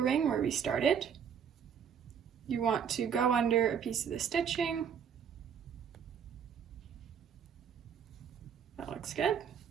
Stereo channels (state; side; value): quieter; left; 7.7 dB